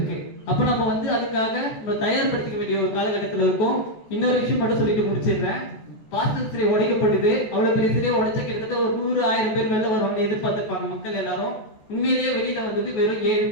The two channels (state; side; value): late; right; 14 ms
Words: அப்ப நம்ம வந்து அதுக்காக நம்ம தயார்படுத்திக்க வேண்டிய ஒரு காலகட்டத்தில் இருக்கும். இன்னொரு விஷயம் மட்டும் சொல்லிட்டு முடிச்சிடுறேன். பாஸ்டர் சிலை உடைக்கப்பட்டது, அவ்வளவு பெரிய சிலையை உடைச்ச கிட்டத்தட்ட ஒரு 100,000 பேர் வெளில வருவாங்க எதிர்பார்த்திருப்பாங்க மக்கள் எல்லாரும். உண்மையிலேயே வெளியில வந்தது வெறும் 7